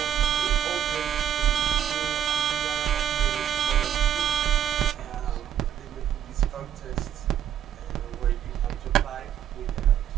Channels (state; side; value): quieter; left; 9.9 dB